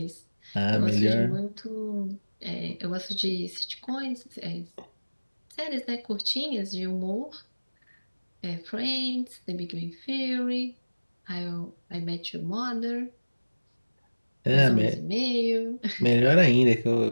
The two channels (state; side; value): inverted; both; correlation -1.00